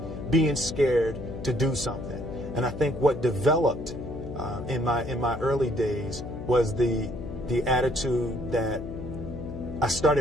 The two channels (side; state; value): left; noise; hum, 9 dB below the sound